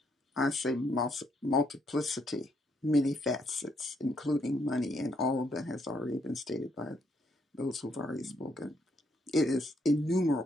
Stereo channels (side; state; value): both; normal; correlation 0.73